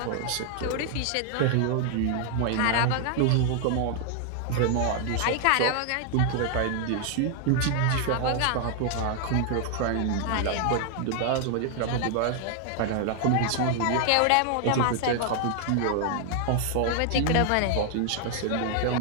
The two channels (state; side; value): different; both; correlation 0.00